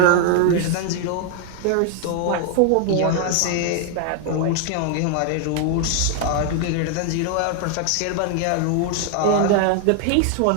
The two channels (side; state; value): both; different; correlation 0.00